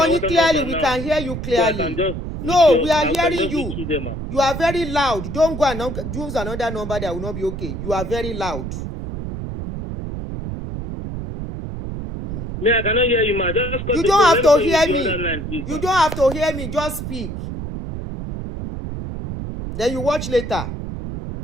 clearly. We can hear you clearly. No, we are hearing you. You are very loud. Don't go and use another number that will not be okay. You are very loud. Me, I cannot hear you, ma. You don't have to hear me. You don't have to hear me. Just speak. Then you watch later.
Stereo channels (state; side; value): noise; right; rumble, 6 dB below the sound